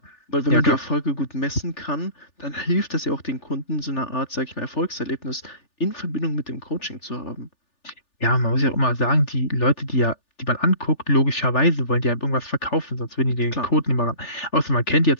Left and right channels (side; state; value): right; late; 3.4 ms